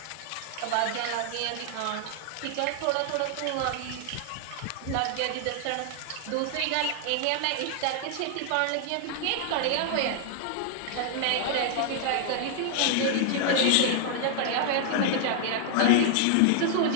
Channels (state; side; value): different; both; correlation 0.00